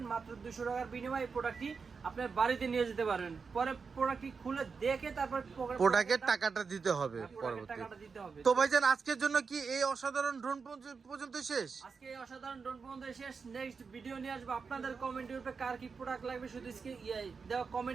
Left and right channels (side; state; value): left; quieter; 5.2 dB